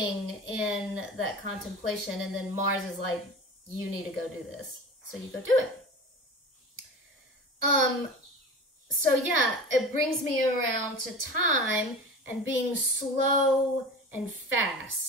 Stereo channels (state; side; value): normal; both; correlation 0.33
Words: in that contemplation, and then Mars is like, you need to go do this. So you go do it. So yeah, it brings me around to time and being slow and